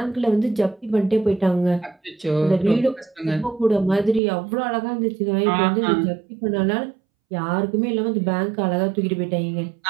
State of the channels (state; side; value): drops out; left; at 4.2 s